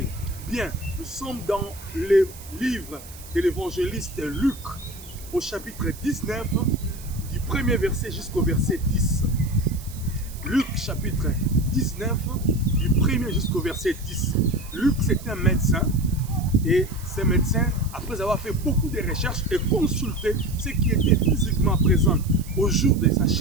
Bien, nous sommes dans le livre de l'évangéliste Luc, au chapitre 19, du premier verset jusqu'au verset 10. Luc, chapitre 19, du premier jusqu'au verset 10. Luc, c'est un médecin. Et ce médecin, après avoir fait beaucoup de recherches et consulté ceux qui étaient physiquement présents au jour de sa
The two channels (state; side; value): noise; right; hiss, 18 dB below the sound